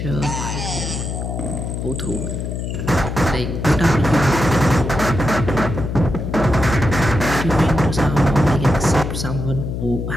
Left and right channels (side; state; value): left; noise; hum, 4 dB below the sound